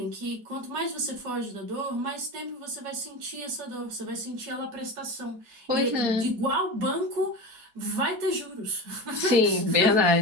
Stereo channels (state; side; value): late; left; 4.7 ms